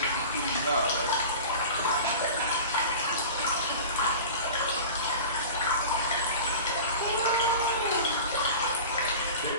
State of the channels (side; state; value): both; inverted; correlation -0.35